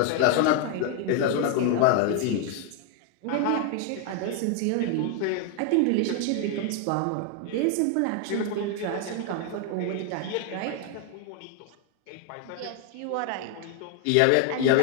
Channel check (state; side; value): different; both; correlation 0.01